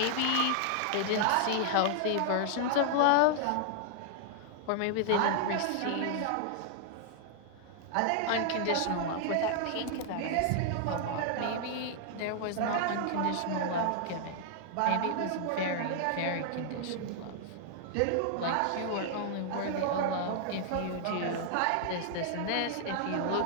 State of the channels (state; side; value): different; both; correlation -0.01